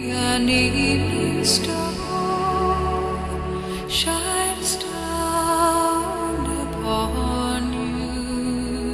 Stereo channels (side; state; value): both; identical; correlation 1.00